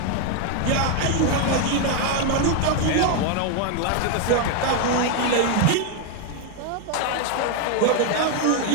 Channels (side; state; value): both; different; correlation 0.01